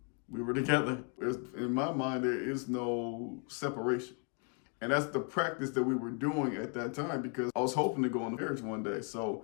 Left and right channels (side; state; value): right; quieter; 37.3 dB